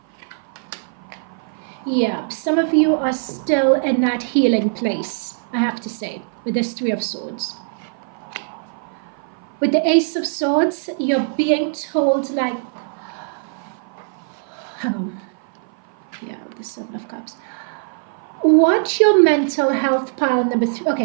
Yeah, some of you are still in that healing place, I have to say, with this Three of Swords. With the Ace of Swords, you're being told, like, hang on. Yeah, the Seven of Cups. Watch your mental health, pile number 3.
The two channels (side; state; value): left; silent; 56 dB below the other